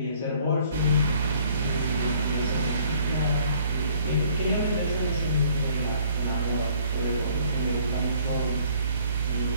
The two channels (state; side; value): inverted; both; correlation -0.59